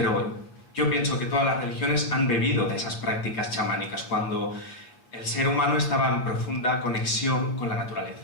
yo pienso que todas las religiones han bebido de esas prácticas chamánicas cuando el ser humano estaba en profunda conexión con la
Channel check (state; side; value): late; right; 8.3 ms